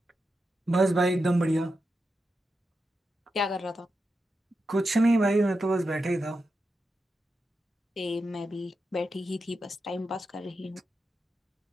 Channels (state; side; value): normal; both; correlation 0.88